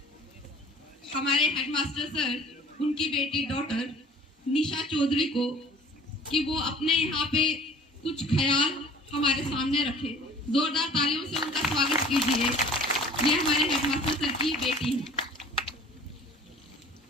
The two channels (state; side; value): normal; both; correlation 0.48